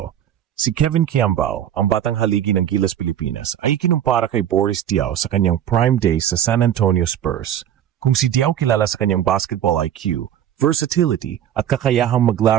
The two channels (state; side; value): quieter; left; 10.5 dB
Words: Si Kevin Quiambao, ang batang haligi ng Gilas Pilipinas, ay kinumpara kay Boris Diaw sa kanyang prime days sa San Antonio Spurs. Kung si Diaw kilala sa kanyang basketball IQ, versatility at kakayahang